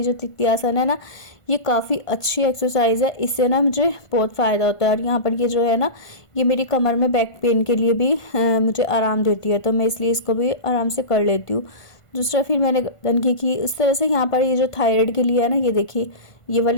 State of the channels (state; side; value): late; right; 1.5 ms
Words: जो तित्यासन है ना, ये काफ़ी अच्छी एक्सरसाइज है, इससे ना मुझे बहुत फ़ायदा होता है। और यहाँ पर ये जो है ना, ये मेरी कमर में बैक पेन के लिए भी मुझे आराम देती है, तो मैं इसलिए इसको भी आराम से कर लेती हूँ। दूसरा फिर मैंने गर्दन की इस तरह से। यहाँ पर ये जो थायराइड के लिए है ना, ये देखिए ये